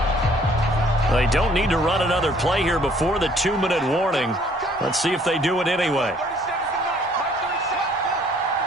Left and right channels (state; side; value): normal; both; correlation 0.60